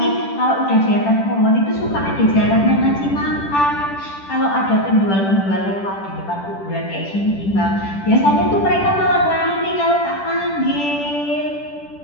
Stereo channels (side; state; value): right; late; 10 ms